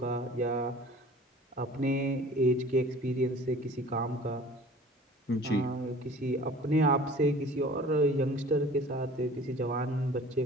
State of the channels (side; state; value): both; normal; correlation 0.46